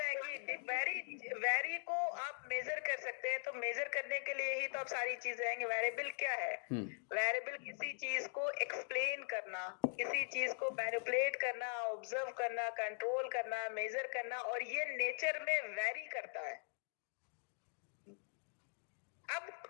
है कि वेरी को आप मेजर कर सकते हैं, तो मेजर करने के लिए ही तो आप सारी चीजें आएंगे। वेरिएबल क्या है? वेरिएबल किसी चीज को एक्सप्लेन करना, किसी चीज को मैनिपुलेट करना, ऑब्जर्व करना, कंट्रोल करना, मेजर करना, और ये नेचर में वेरी करता है। अब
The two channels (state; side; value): silent; right; digital silence